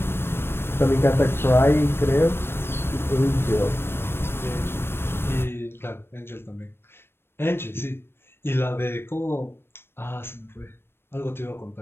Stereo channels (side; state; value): right; late; 0.11 ms